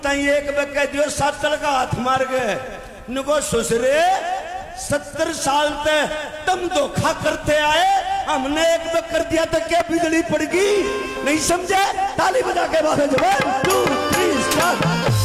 तई एक बे कह दियो 7 का हाथ मार गए। नुको सुसरे 70 साल ते तुम धोखा करते आए, हमने एक बे कर दिया तो क्या बिजली पड़गी? नहीं समझे? ताली बजा के बाद 1 2 3 स्टार्ट।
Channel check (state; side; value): identical; both; correlation 1.00